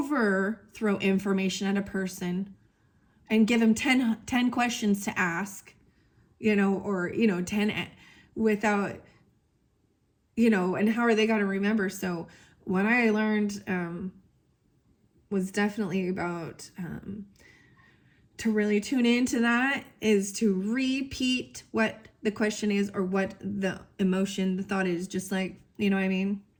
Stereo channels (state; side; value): identical; both; correlation 1.00